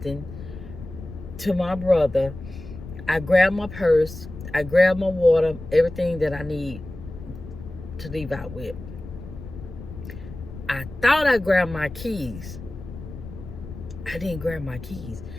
to my brother. I grab my purse, I grab my water, everything that I need to leave out with. I thought I grabbed my keys. I didn't grab my keys.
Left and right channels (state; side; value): noise; left; rumble, 12 dB below the sound